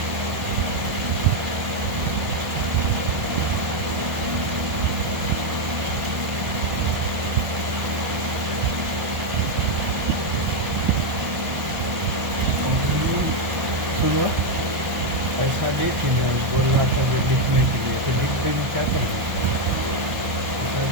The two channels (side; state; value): left; late; 1.4 ms